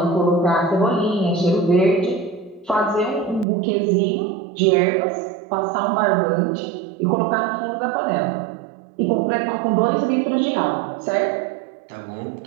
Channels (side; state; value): left; drops out; at 3.5 s